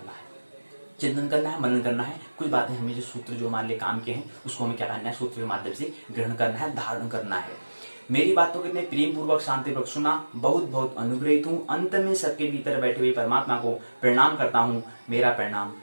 है। चिंतन करना है, मनन करना है। कुछ बातें हमें जो सूत्र जो हमारे लिए काम के हैं उसको हमें क्या करना है, सूत्र के माध्यम से ग्रहण करना है, धारण करना है। मेरी बातों को इतने प्रेम पूर्वक शांतिपूर्वक सुना, बहुत बहुत अनुग्रहित हूँ। अंत में सबके भीतर बैठे हुए परमात्मा को प्रणाम करता हूँ। मेरा प्रणाम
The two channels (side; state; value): both; inverted; correlation -1.00